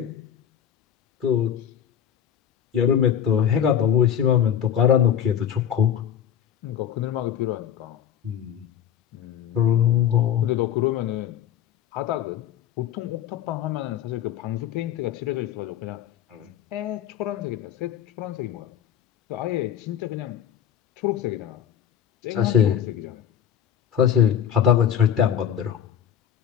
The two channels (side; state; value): right; quieter; 9.3 dB